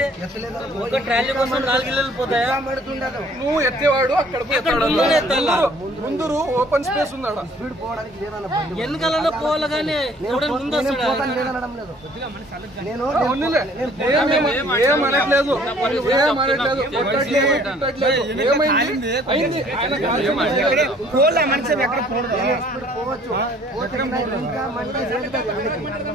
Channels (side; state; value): both; normal; correlation 0.57